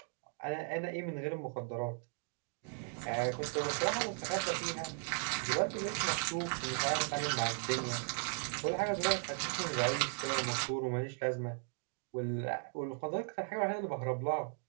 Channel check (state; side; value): silent; left; 53 dB below the other